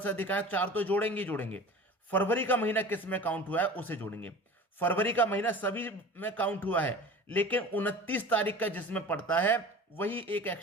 अधिक आए 4 तो जोड़ेंगे ही जोड़ेंगे। फरवरी का महीना किस में काउंट हुआ है उसे जोड़ेंगे। फरवरी का महीना सभी में काउंट हुआ है, लेकिन 29 तारीख का जिसमें पड़ता है वही एक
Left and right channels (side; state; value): both; normal; correlation 0.38